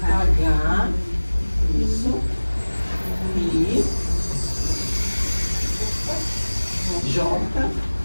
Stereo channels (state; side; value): inverted; both; correlation -1.00